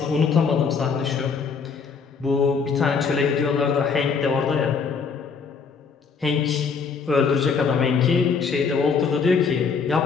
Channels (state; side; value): quieter; right; 5.6 dB